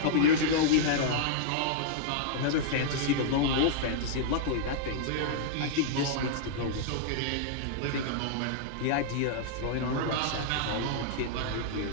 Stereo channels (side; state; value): both; different; correlation -0.02